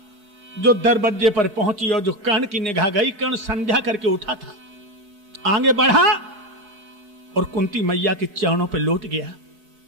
जो दरवाजे पर पहुंची और जो कर्ण की निगाह गई, कर्ण संध्या करके उठा था, आगे बढ़ा और कुंती मैया के चरणों पर लौट गया।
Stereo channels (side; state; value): left; late; 4.5 ms